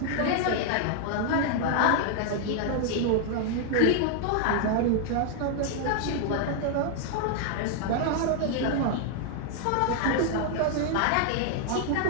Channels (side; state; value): both; different; correlation 0.00